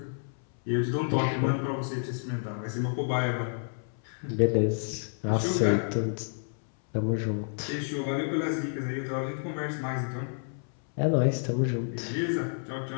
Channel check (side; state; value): right; silent; 58 dB below the other